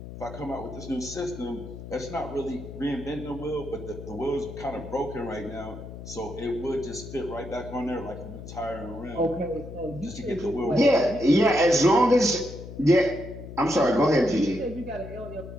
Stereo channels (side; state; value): left; noise; hum, 12 dB below the sound